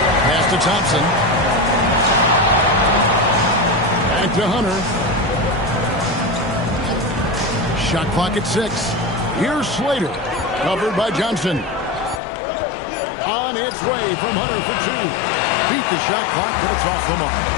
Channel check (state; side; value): drops out; right; at 12.2 s